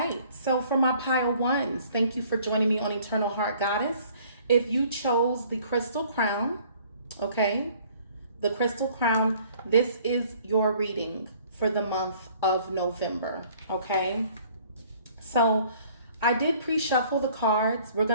so for my pile 1s, thank you for joining me on Eternal Heart Goddess. If you chose the crystal crown, okay, the crystal crown, this is your reading for the month of November, okay? So I did pre-shuffle the cards. We're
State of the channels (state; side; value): inverted; both; correlation -0.56